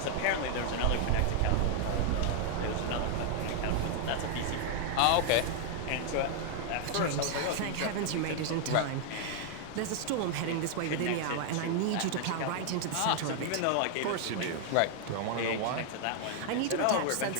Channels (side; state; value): both; different; correlation 0.00